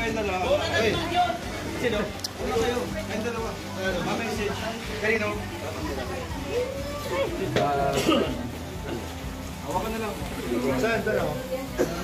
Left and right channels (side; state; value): both; identical; correlation 1.00